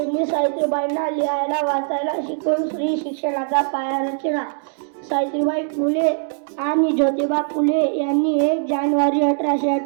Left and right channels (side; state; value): left; silent; digital silence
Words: सावित्रीबाईंना लिहायला वाचायला शिकवून स्त्री शिक्षणाचा पाया रचला. सावित्रीबाई फुले आणि ज्योतिबा फुले यांनी 1 जानेवारी